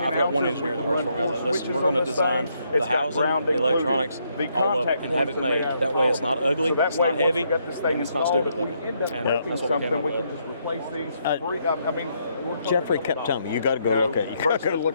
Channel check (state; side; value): inverted; both; correlation -0.75